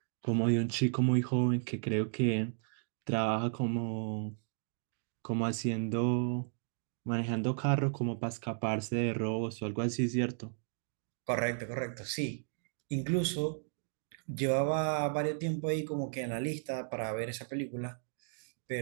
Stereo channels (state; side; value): silent; left; digital silence